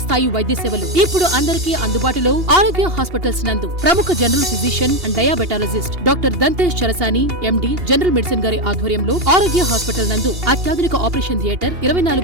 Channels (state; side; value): late; left; 2.8 ms